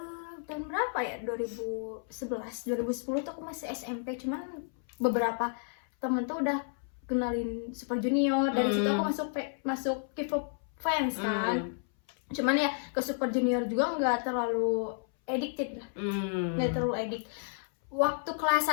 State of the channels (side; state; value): right; silent; 57 dB below the other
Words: Tahun berapa ya? 2011, 2010 tuh aku masih SMP. Cuman beberapa temen tuh udah kenalin Super Junior. Dari situ aku masuk K-pop fans kan. Cuman ya ke Super Junior juga nggak terlalu addicted lah. Nggak terlalu addict. Waktu kelas